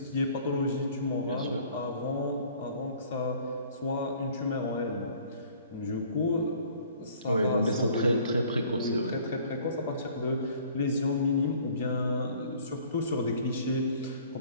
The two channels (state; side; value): inverted; both; correlation -0.54